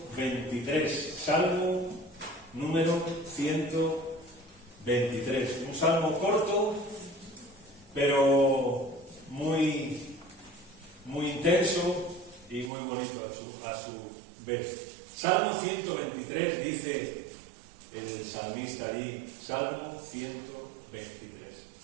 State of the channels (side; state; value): left; drops out; at 12.7 s